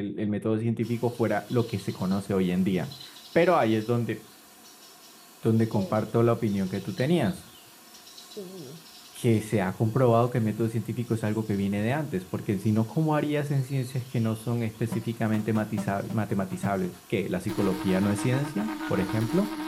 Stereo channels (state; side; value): identical; both; correlation 1.00